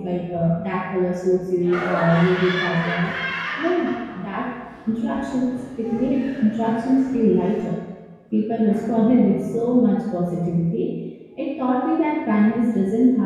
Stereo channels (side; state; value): both; identical; correlation 1.00